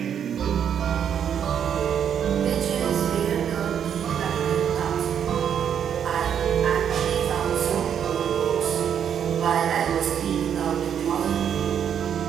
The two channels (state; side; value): quieter; left; 8.5 dB